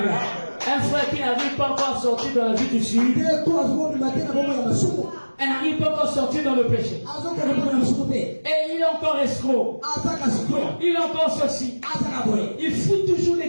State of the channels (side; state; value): both; inverted; correlation -1.00